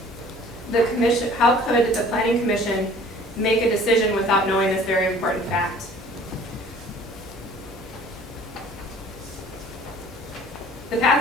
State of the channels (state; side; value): normal; both; correlation 0.51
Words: the Planning Commission make a decision without knowing this very important fact. The